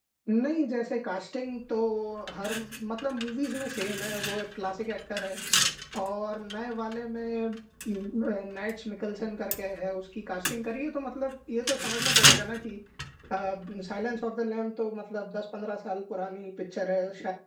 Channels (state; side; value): identical; both; correlation 1.00